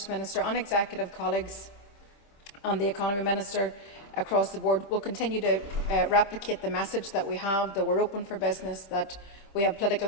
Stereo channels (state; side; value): late; right; 25 ms